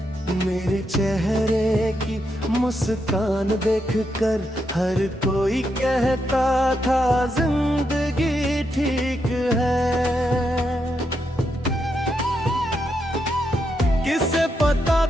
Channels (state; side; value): normal; both; correlation 0.82